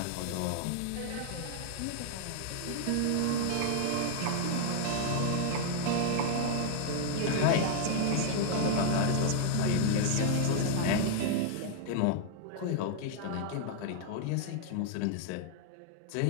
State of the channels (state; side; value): different; both; correlation -0.01